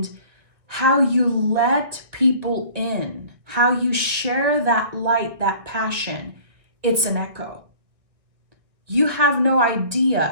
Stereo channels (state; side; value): late; left; 1.9 ms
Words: how you let people in, how you share that light, that passion. It's an echo. You have no